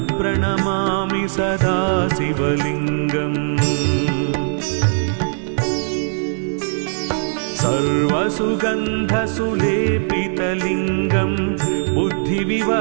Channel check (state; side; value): silent; left; digital silence